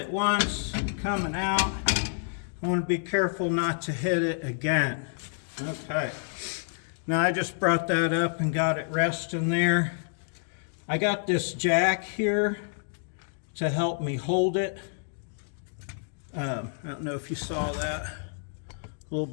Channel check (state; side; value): silent; right; digital silence